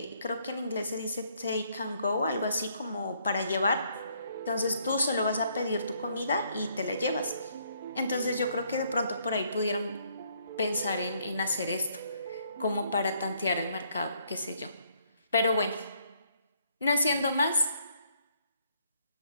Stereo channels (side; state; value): both; inverted; correlation -0.69